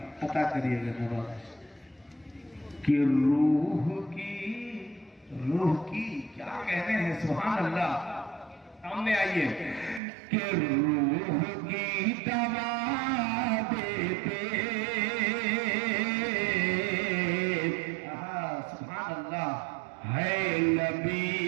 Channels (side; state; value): left; drops out; at 10.0 s